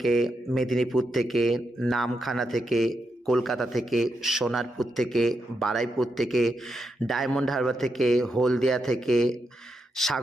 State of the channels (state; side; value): normal; both; correlation 0.84